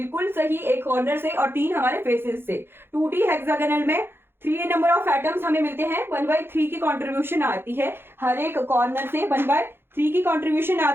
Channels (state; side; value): late; left; 0.11 ms